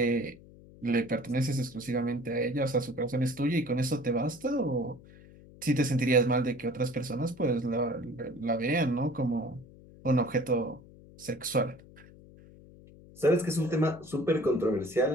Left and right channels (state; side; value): noise; left; hum, 21 dB below the sound